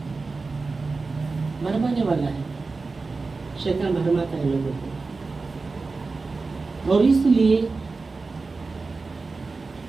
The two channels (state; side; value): quieter; left; 4.0 dB